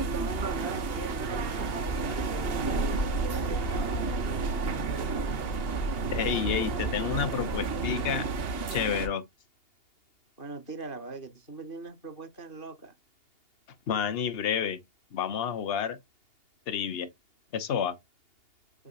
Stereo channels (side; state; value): right; late; 2.8 ms